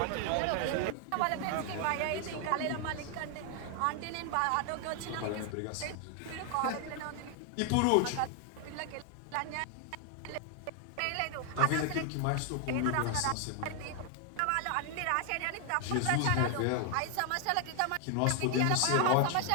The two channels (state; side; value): different; both; correlation 0.00